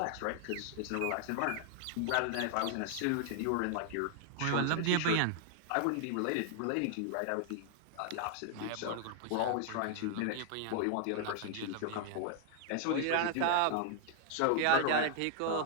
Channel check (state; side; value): different; both; correlation 0.00